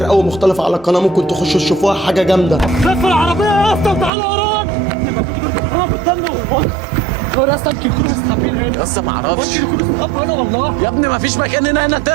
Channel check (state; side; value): drops out; left; at 4.1 s